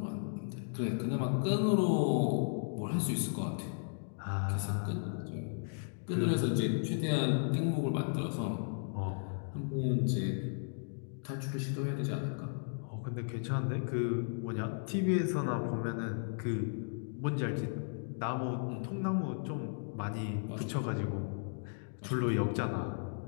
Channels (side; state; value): right; silent; digital silence